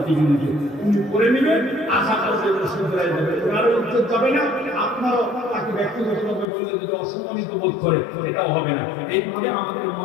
চিঠি দিতে, উনি করে নেবেন, আশা করছে শুধরাই যাবে, ওনারও উত্তর যাবে না, আপনারও তাকে ব্যক্তিগতভাবে বললে যদি অসম্মানিত বোধ করে এটাও হবে না। এইভাবে আমাদের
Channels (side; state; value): right; drops out; at 6.5 s